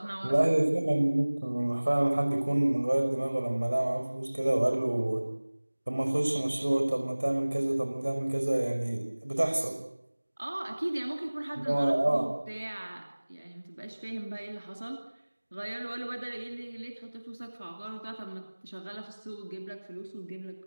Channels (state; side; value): inverted; both; correlation -1.00